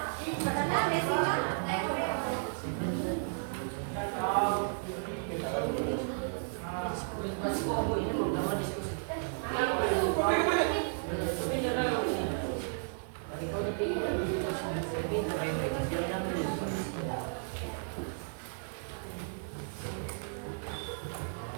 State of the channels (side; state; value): left; silent; digital silence